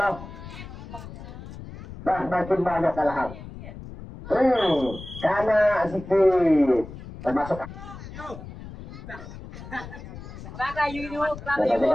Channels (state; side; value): noise; left; rumble, 13 dB below the sound